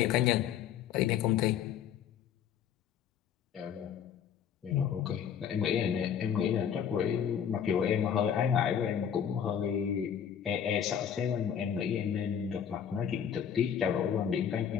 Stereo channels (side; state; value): right; quieter; 8.6 dB